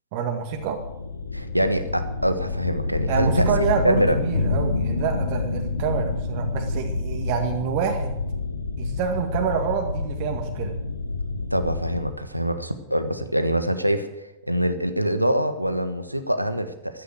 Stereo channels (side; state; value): both; inverted; correlation -0.64